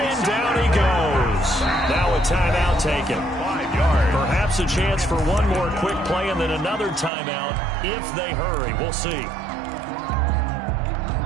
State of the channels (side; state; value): left; drops out; at 7.1 s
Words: down he goes. Now a timeout taken. 5 yards. Perhaps a chance for one more quick play and then another timeout if they hurry. We'll see.